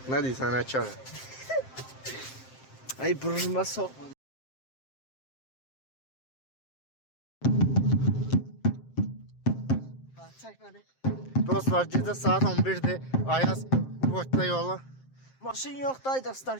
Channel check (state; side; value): late; right; 7.6 ms